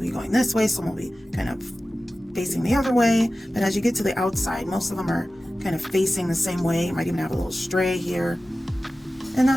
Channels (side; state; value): both; normal; correlation 0.95